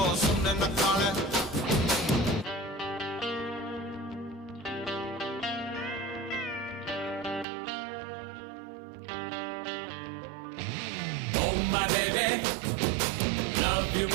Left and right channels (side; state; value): left; drops out; at 7.5 s